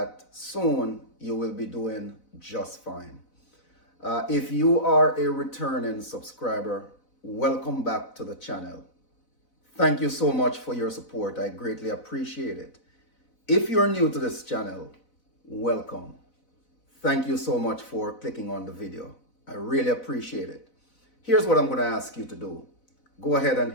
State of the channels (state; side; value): late; right; 4.0 ms